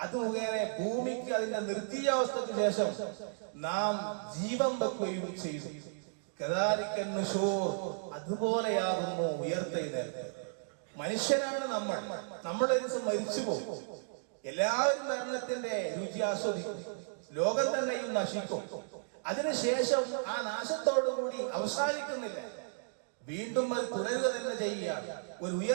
അത് മുഖേന ഭൂമിക്ക് അതിന്റെ നിർജീവാവസ്ഥയ്ക്ക് ശേഷം നാം ജീവൻ വെക്കുകയും ചെയ്തു. അതുപോലെയാകുന്നു ഉയർത്തെഴുന്നേൽപ്പ്. മനുഷ്യനാണ് നമ്മൾ, നമ്മുടെ ദിവസം മരിച്ചു പോകും. എല്ലാവരും മരണത്തിന്റെ രുചി ആസ്വദിക്കും, ലോകം തന്നെയും നശിക്കും. അതിനുശേഷം ആ നാശത്തോടുകൂടി അവസാനിക്കുന്നില്ല, വീണ്ടും അത് തുടരുക തന്നെ ചെയ്യുകയാണ്. ഒരു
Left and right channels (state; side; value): silent; left; digital silence